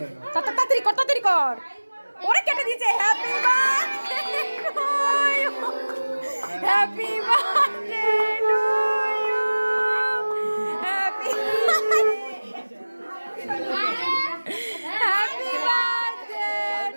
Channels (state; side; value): inverted; both; correlation -1.00